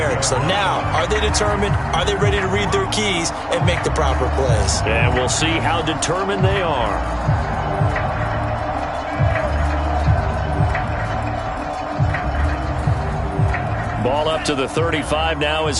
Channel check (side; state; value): both; identical; correlation 1.00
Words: So now, are they determined? Are they ready to read their keys and make the proper plays? And we'll see how determined they are. Ball up to the 35 now as